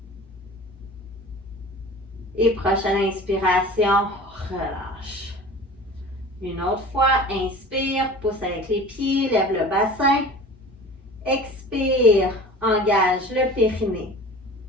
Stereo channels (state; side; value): normal; both; correlation 0.40